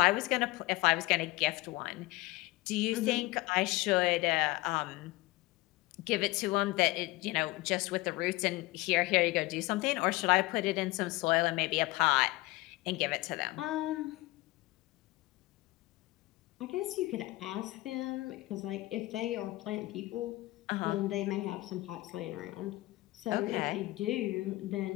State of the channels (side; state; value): right; quieter; 20.2 dB